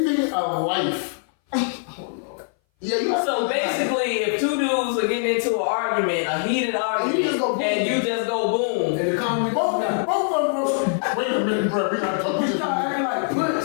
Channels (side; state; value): right; silent; 59 dB below the other